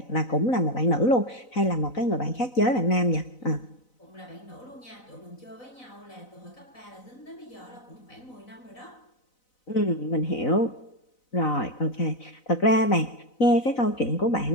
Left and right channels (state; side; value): late; right; 4.0 ms